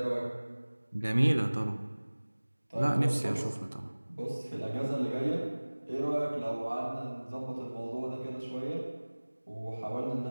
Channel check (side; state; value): both; inverted; correlation -1.00